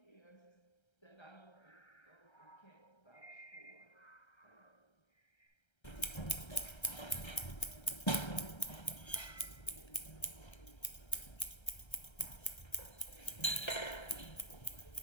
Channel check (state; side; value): late; right; 1.3 ms